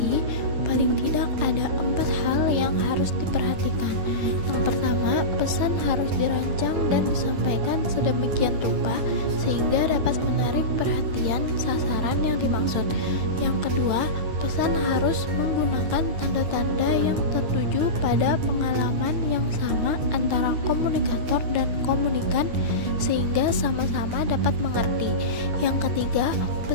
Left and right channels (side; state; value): left; late; 9.6 ms